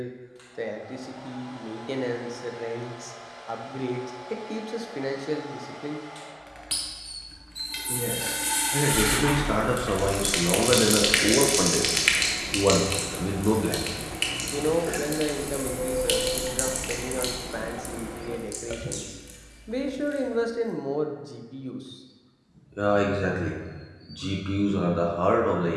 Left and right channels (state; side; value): identical; both; correlation 1.00